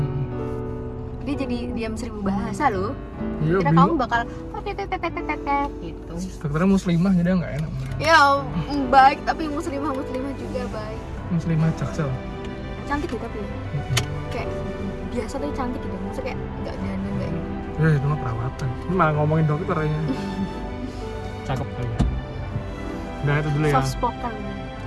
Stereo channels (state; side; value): identical; both; correlation 1.00